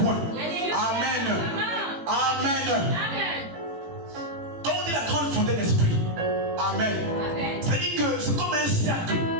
point. Amen. Amen. Quand on dit la grande fontaine d'esprit, amen. C'est-à-dire que c'est comme un cercle.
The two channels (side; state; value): left; late; 18 ms